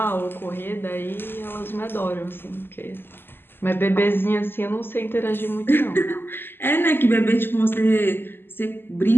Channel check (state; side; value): late; right; 0.10 ms